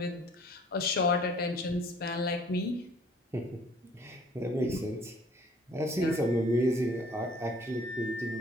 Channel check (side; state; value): both; normal; correlation 0.55